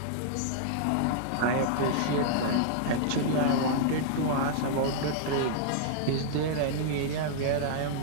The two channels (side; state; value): both; different; correlation -0.01